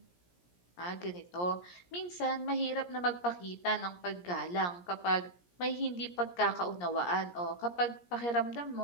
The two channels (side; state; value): right; late; 17 ms